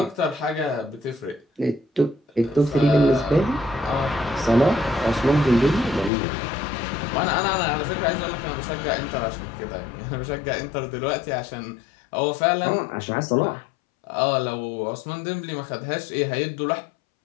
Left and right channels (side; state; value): right; drops out; at 6.1 s